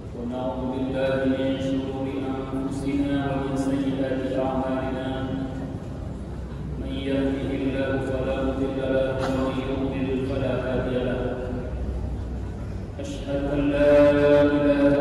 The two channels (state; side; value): identical; both; correlation 1.00